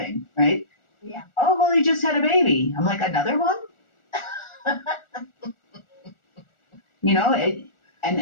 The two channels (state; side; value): late; right; 1.4 ms